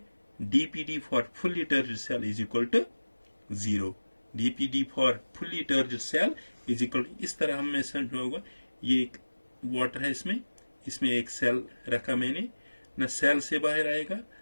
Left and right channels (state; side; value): inverted; both; correlation -1.00